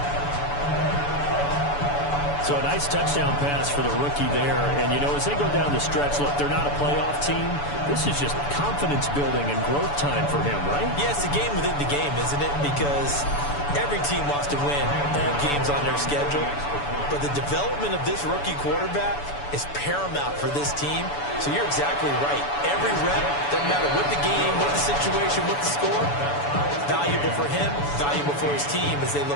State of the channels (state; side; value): late; right; 7.0 ms